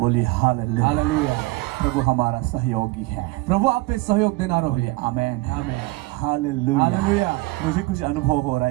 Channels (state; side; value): quieter; left; 20.8 dB